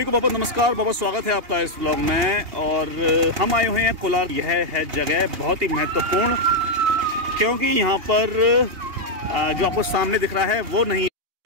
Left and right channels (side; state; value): left; late; 2.8 ms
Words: को बहुत नमस्कार, बहुत स्वागत है आपका इस ब्लॉग में। और हम आए हुए हैं कोलार। यह है जगह बहुत ही महत्वपूर्ण, क्योंकि यहाँ पर जो आपको सामने दिख रहा है वो नहीं,